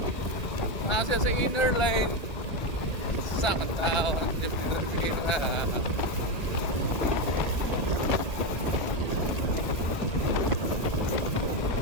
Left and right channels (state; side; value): late; right; 1.9 ms